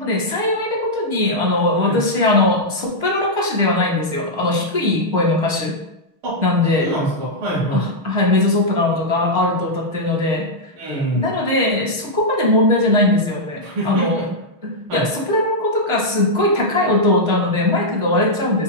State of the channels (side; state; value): left; late; 6.4 ms